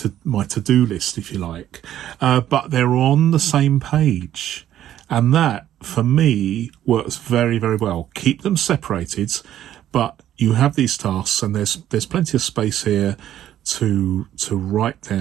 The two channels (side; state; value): left; quieter; 11.8 dB